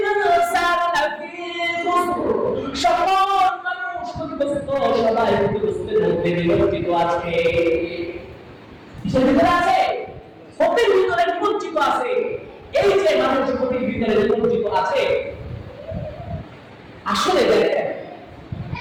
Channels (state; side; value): identical; both; correlation 1.00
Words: লাফি খুসর, সকল মানুষ ক্ষতিগ্রস্ত, সবাই ক্ষতিগ্রস্তের মধ্যে নিমজ্জিত আছে। কিসের ভিতরে আছে? ক্ষতির ভিতরে নিমজ্জিত আছে। এই যে মানুষ ক্ষতির ভিতরে নিমজ্জিত আছে, আসলে দেখেন